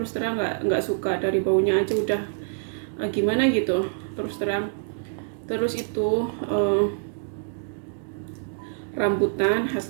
terang nggak suka, dari baunya aja udah gimana gitu terus terang. Terus itu rambutan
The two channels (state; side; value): silent; left; digital silence